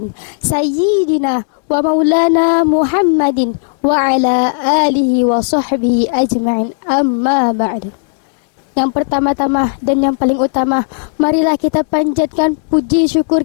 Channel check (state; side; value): silent; right; digital silence